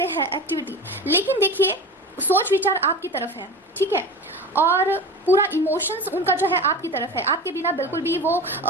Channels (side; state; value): both; normal; correlation 0.32